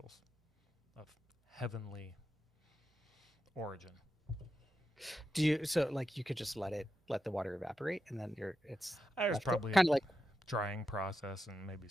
of heavenly origin. You could just let the water evaporate, and then it's probably kind of like drying process and maybe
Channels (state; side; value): normal; both; correlation 0.88